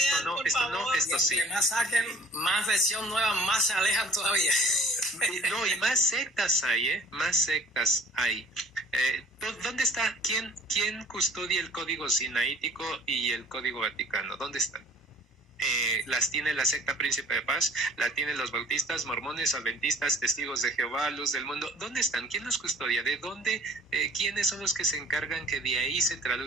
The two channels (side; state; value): both; normal; correlation 0.50